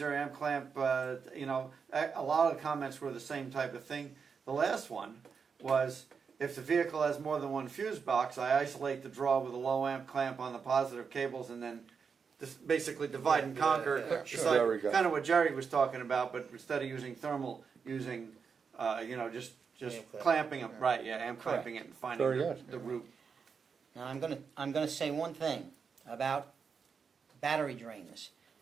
amp clamp, you know, a lot of the comments were the same type of thing. The last one was, if the vehicle has more than one fuse box, I isolate the draw with a low amp clamp on the positive cables and then just basically divide and conquer. yeah, It's sure. There we go. kind of what Jerry was talking about, but instead of using thermal, using, you know, just Amp clamp. clamping them, right, yeah, amp Correct. clamping it and finding Very the, good. the root. Now, I'm gonna say one thing about battery drains.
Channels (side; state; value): left; quieter; 5.9 dB